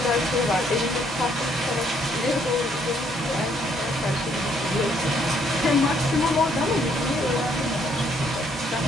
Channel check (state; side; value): normal; both; correlation 0.68